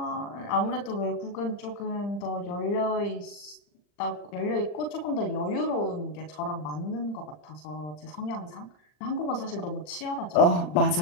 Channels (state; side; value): late; right; 40 ms